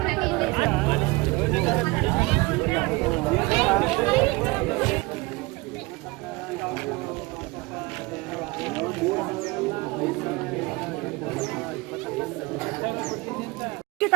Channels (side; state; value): left; quieter; 23.6 dB